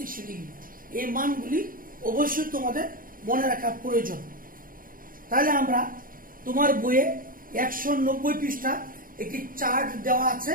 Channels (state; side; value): late; left; 0.41 ms